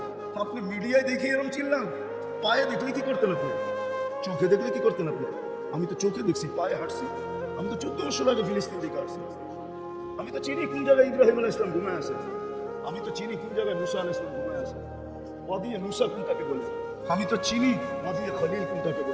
আপনি মিডিয়ায় দেখে এরকম চিনলাম, পায়ে দেখলে কি করতেন আপনি, চোখে দেখলে কি করতেন আপনি? আমি তো চোখে দেখছি, পায়ে হাঁটছি। আমি তো 14 বছর আগে ফিলিস্তিন দিকে আসছি। আমি তো চিনি কোন জায়গায় ইব্রাহিম আলাইহিস সালাম ঘুমায় আছে। আমি তো চিনি কোন জায়গায় মুসা আলাইহিস সালাম ঘুমায় আছে। ওয়াদিয়ে মুসা কোনটাকে বলে। আমি তো চিনি ওয়াদিয়ে খলিল কোনটাকে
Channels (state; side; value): identical; both; correlation 1.00